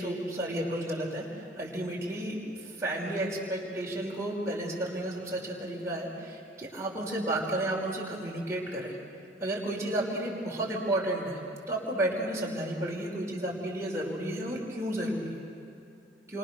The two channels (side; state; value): both; normal; correlation 0.50